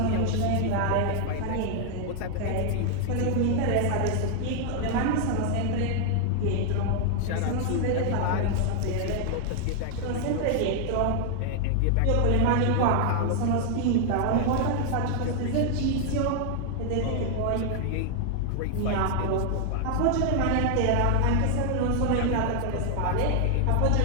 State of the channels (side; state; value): both; different; correlation 0.00